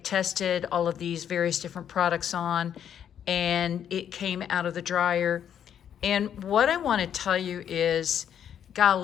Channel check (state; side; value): quieter; right; 9.2 dB